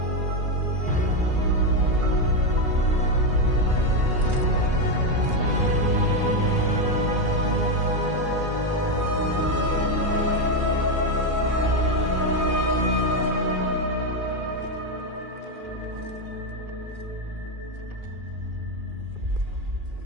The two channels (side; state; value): left; late; 2.4 ms